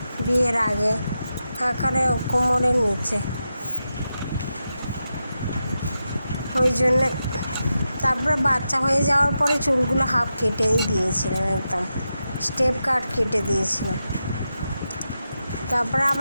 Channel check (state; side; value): inverted; both; correlation -0.88